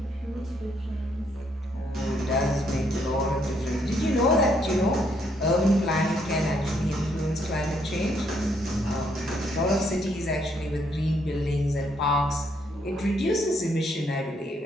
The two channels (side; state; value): both; normal; correlation 0.72